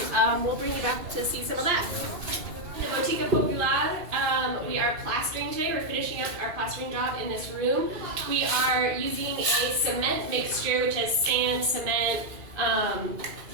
we'll bring you back to see some of that. The Botica Popular, we are plastering today. We're finishing up our plastering job in this room. We are using a cement mixture, which has sand, cement,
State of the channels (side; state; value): left; late; 2.6 ms